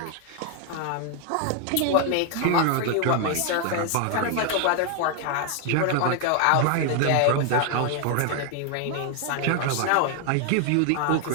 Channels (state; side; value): different; both; correlation 0.00